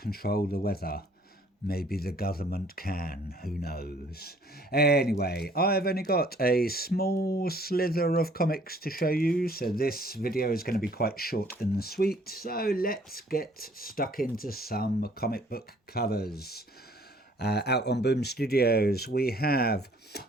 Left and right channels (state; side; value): normal; both; correlation 0.58